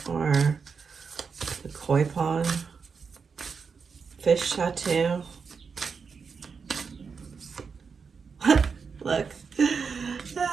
or a koi pond, fish tattoo. Look.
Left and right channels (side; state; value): left; quieter; 5.6 dB